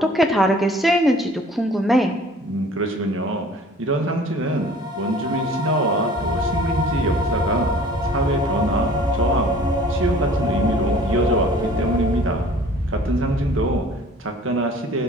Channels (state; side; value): normal; both; correlation 0.49